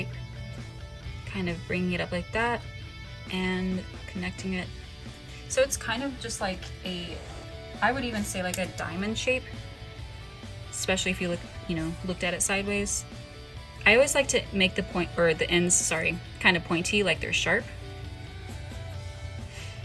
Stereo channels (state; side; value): identical; both; correlation 1.00